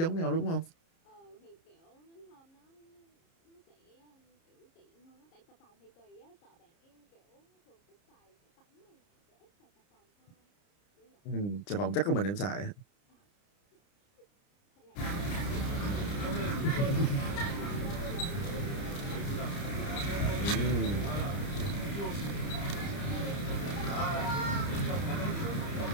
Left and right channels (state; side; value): late; right; 30 ms